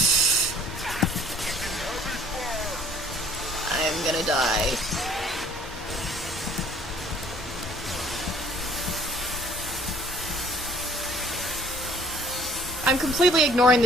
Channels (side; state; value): both; normal; correlation 0.56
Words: I'm gonna die. I'm completely ignoring